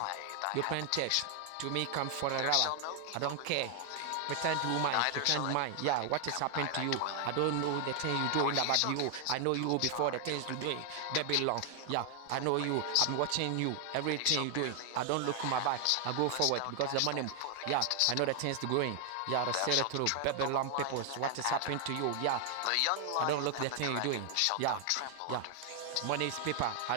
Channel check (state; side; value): different; both; correlation 0.00